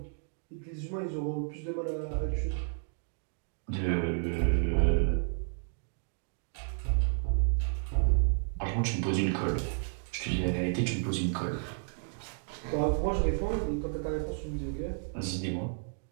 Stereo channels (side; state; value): left; silent; 56 dB below the other